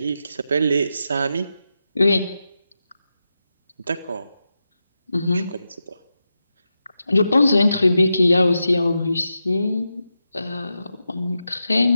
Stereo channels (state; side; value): inverted; both; correlation -0.89